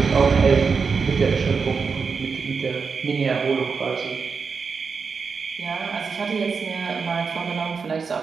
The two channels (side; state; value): left; quieter; 5.3 dB